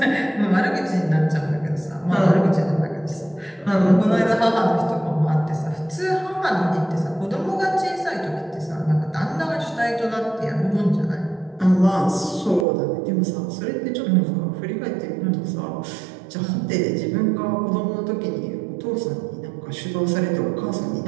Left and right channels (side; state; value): left; drops out; at 12.7 s